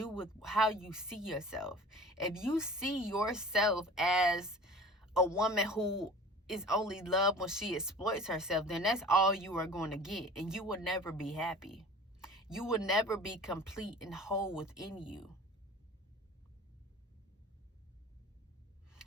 with how you see yourself. If you see yourself as a woman who is only loved when she exploits herself, then that's all you are going to get, and you will never be happy. You will never be complete and whole within you.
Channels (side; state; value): both; normal; correlation 0.42